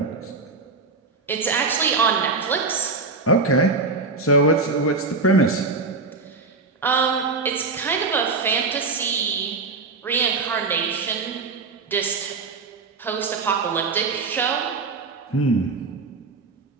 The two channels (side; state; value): left; quieter; 4.0 dB